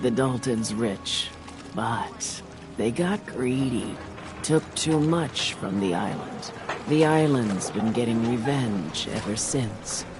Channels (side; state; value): both; identical; correlation 1.00